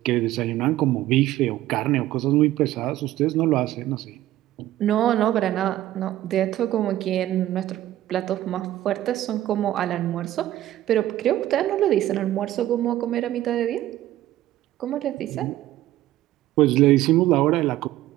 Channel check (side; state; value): left; quieter; 14.2 dB